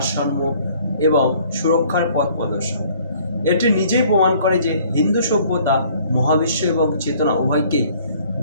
এবং সুরক্ষার পথ প্রদর্শক। এটি নিজেই প্রমাণ করে যে হিন্দু সভ্যতা মহাবিশ্ব এবং চেতনা উভয়কেই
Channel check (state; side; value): inverted; both; correlation -0.57